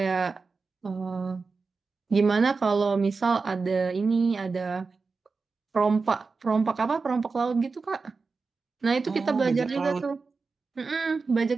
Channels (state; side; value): quieter; left; 4.4 dB